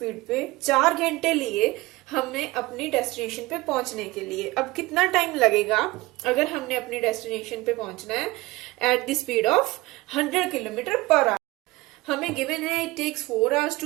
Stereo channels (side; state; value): left; quieter; 20.6 dB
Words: पे 4 घंटे लिए हमने अपनी destination पे पहुंचने के लिए। अब कितना टाइम लगेगा अगर हमने अपनी डेस्टिनेशन पे पहुंचना है at the speed of 100 kilometre per hour. हमें गिवन है it takes 4 hours